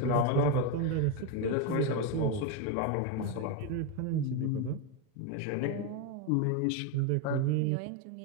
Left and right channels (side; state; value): both; different; correlation 0.03